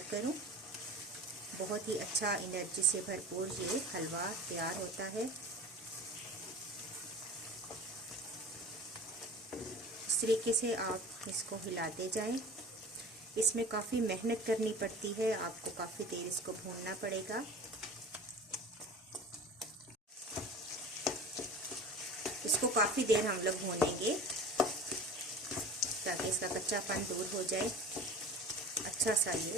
करूँ। बहुत ही अच्छा एनर्जी से भरपूर ये हलवा तैयार होता है। इस तरीके से आप इसको हिलाते जाएं। इसमें काफ़ी मेहनत करनी पड़ती है, आपको काफ़ी देर इसको भूनना पड़ेगा। इसको काफ़ी देर हम लोग भूनेंगे ताकि इसका कच्चापन दूर हो जाए। अच्छा सा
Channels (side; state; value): both; normal; correlation 0.39